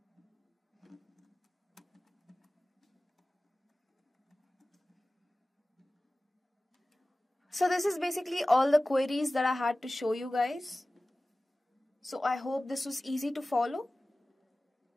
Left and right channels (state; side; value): normal; both; correlation 0.97